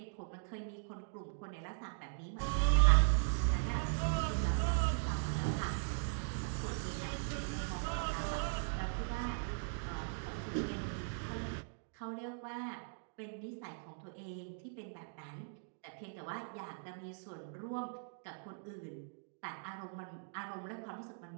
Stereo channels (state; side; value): silent; left; digital silence